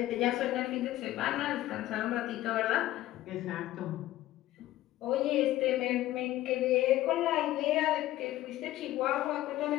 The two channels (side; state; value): right; quieter; 15.1 dB